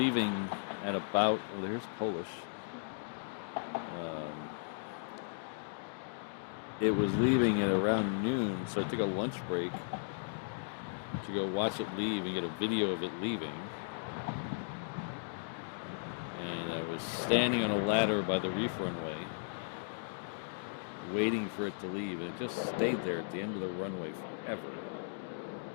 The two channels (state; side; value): silent; right; digital silence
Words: at about, oh, there's Polish. It was leaving at around noon, so I took a lunch break to go watch it leave and get a video of it leaving. And I was standing on a ladder by the reef runway, waiting for it to leave, and it just stayed there at the end of the runway forever.